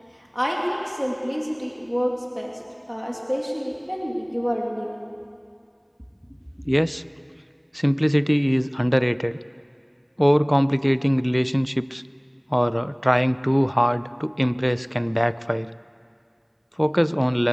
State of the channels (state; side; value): identical; both; correlation 1.00